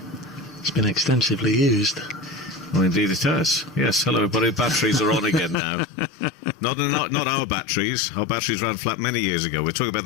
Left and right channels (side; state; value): right; drops out; at 5.6 s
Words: It's been extensively used. Well, indeed it has. Yes, hello everybody, batteries are on again now. Not our batteries. Our batteries ran flat many years ago. We're talking about